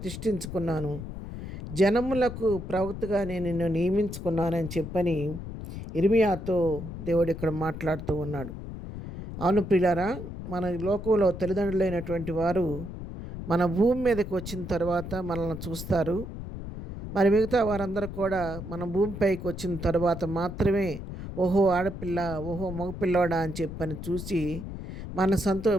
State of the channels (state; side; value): noise; left; rumble, 9 dB below the sound